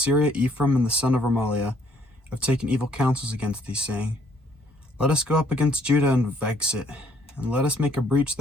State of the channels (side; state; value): both; normal; correlation 0.65